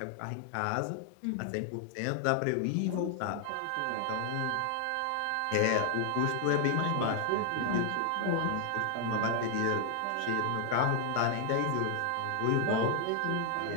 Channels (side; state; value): both; different; correlation 0.00